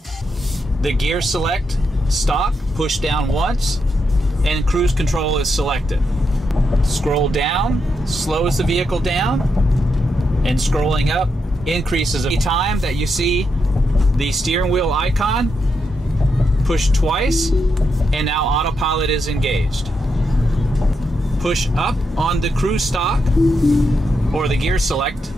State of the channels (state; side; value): normal; both; correlation 0.83